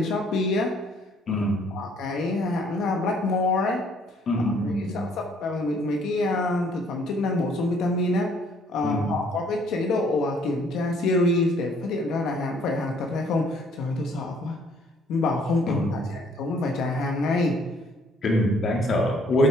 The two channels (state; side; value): normal; both; correlation 0.62